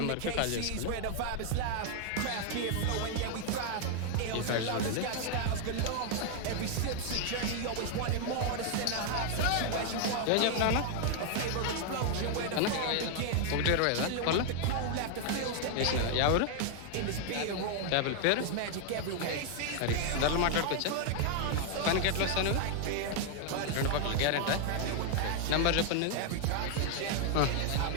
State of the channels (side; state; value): both; different; correlation 0.00